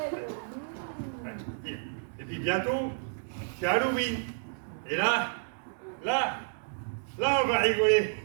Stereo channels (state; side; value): silent; left; digital silence